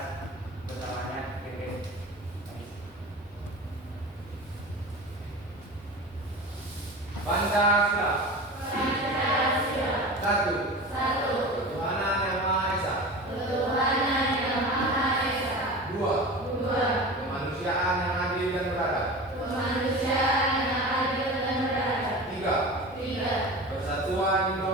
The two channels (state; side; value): normal; both; correlation 0.32